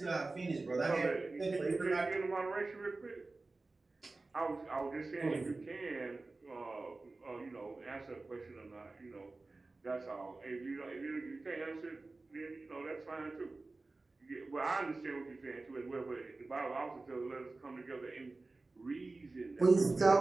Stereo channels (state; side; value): quieter; left; 3.4 dB